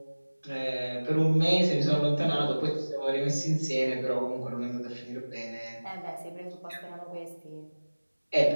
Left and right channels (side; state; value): both; inverted; correlation -1.00